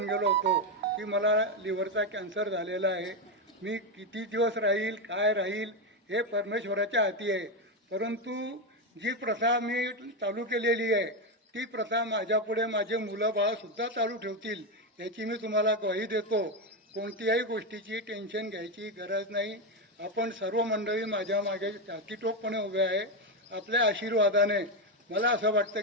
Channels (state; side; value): normal; both; correlation 0.09